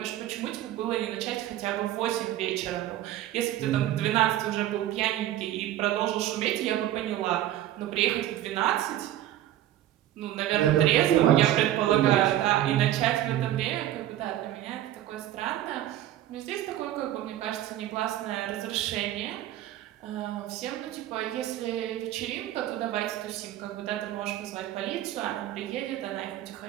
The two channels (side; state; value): left; quieter; 13.1 dB